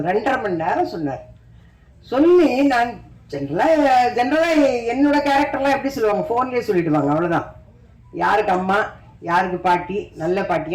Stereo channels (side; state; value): both; identical; correlation 1.00